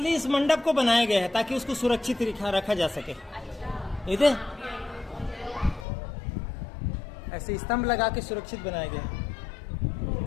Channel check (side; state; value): right; drops out; at 5.9 s